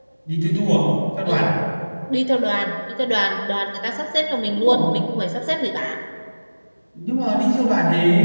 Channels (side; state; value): both; inverted; correlation -1.00